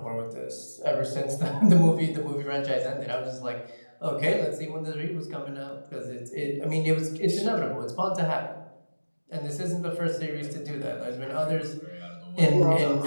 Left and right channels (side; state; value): both; inverted; correlation -1.00